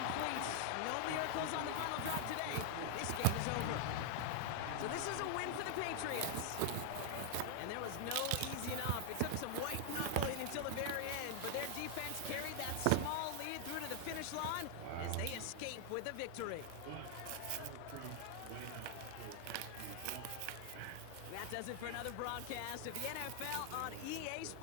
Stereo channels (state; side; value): different; both; correlation 0.00